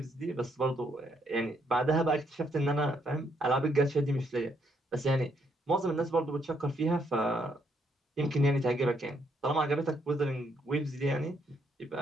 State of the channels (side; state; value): both; normal; correlation 0.73